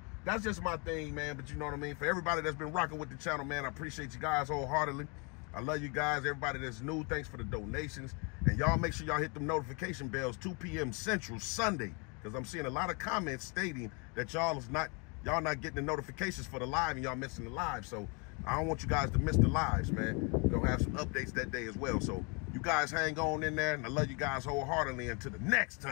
that's just my thing, man. But you know what I mean? For everybody that's been rocking with the channel, man, I appreciate you guys wholeheartedly. I love you guys. Everybody that's new, thanks for the donations. And y'all make sure y'all hit them notification bells 2 p.m. Central Sunday, because I'm seeing a lot of comments stating that y'all not getting the notifications for the live and y'all missing the live. So I don't want you guys to miss the lives, man. We're gonna have some updates that day as well. So you guys hang on in there, and I love you guys wholeheartedly. Until the next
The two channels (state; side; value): quieter; right; 33.1 dB